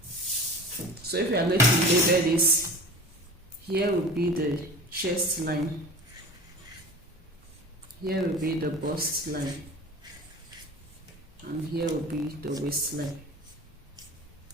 So if we are going to label this, here will be the chest line, here will be the bust line, and here will be the waistline.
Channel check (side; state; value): both; normal; correlation 0.37